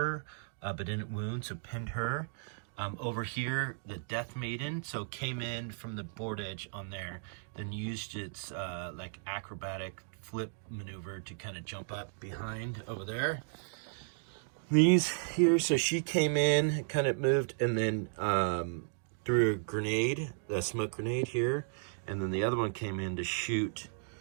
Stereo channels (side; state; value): left; silent; digital silence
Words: but didn't wound, so pinned her. Over here, the Death Maiden, so came in from the board edge on there, then used its like acrobatic flip maneuver to kind of jump up behind over there. These here, so she came in, kind of moved, and then threw a grenade, a smoke grenade here, and then the other one came in to shoot